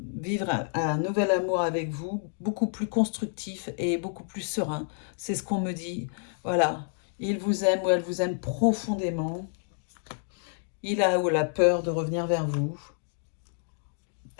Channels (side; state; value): right; silent; digital silence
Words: un nouvel amour avec vous, beaucoup plus constructif et beaucoup plus serein. C'est ce qu'on me dit. Voilà. Il vous aime ou elle vous aime profondément. Il a ou la peur de revenir vers vous.